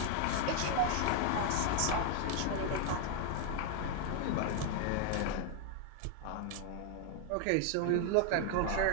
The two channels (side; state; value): both; different; correlation 0.00